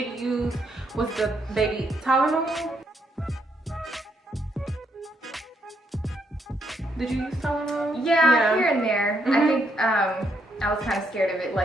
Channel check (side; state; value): both; normal; correlation 0.75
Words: use was the baby Tylenol. Did you use Tylenol? Yeah, here and there. I think I was kind of scared of it,